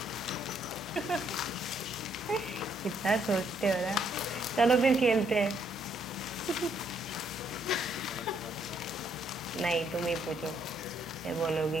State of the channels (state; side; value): normal; both; correlation 0.71